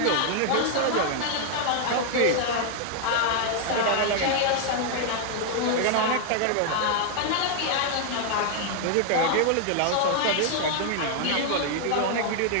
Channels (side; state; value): both; different; correlation 0.00